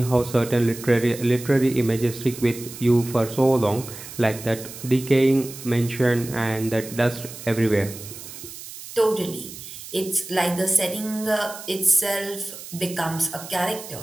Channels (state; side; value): noise; right; hiss, 13 dB below the sound